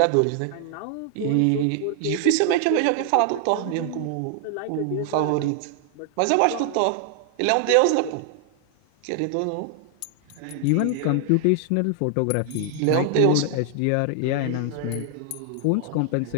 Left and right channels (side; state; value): both; different; correlation 0.00